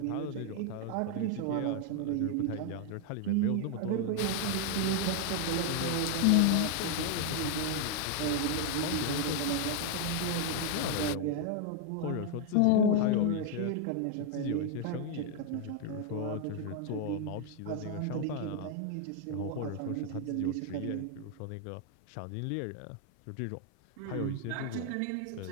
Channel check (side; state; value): both; different; correlation 0.00